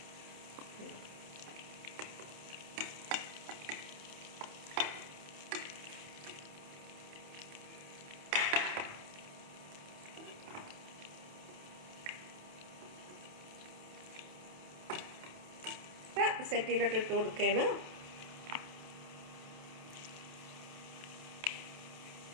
സെറ്റിയിലോട്ട് ഇട്ട് കൊടുക്കുകയാണ്.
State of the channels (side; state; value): left; late; 28 ms